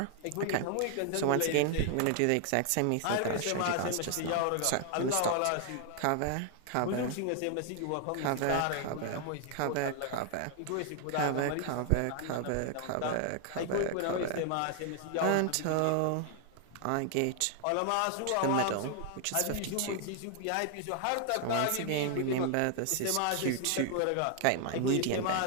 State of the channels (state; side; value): different; both; correlation 0.00